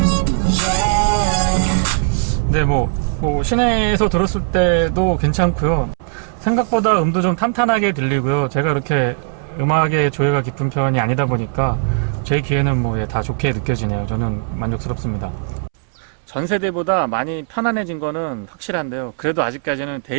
네, 뭐 시내에서 들었을 때도 괜찮고요. 생각보다 음도 좀 탄탄하게 들리고요. 제가 그렇게 음악의 조예가 깊은 편이 아니다 보니까 제 귀에는 다 좋게 느껴지네요. 저는 만족스럽습니다. 전 세대보다 많이 편안해진 거는 확실한데요. 그래도 아직까지는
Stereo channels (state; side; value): silent; left; 67 dB below the other